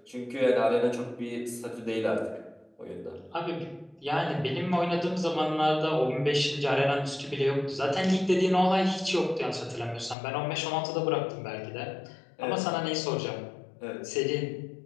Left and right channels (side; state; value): right; drops out; at 10.2 s